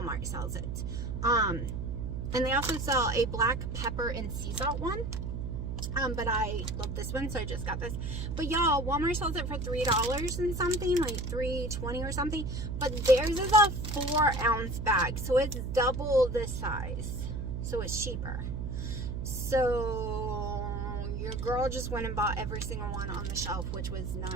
sells it. And they also sell a black pepper and sea salt one. But I love this one, so I just got this. But y'all, Walmart sells it for $3 and something, like $3.20 or something. But theirs is a 4-ounce bag, so it's double this size. So it's cheaper. So your girl just went and bought every single one on the shelf, which was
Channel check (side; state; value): right; noise; hum, 4 dB below the sound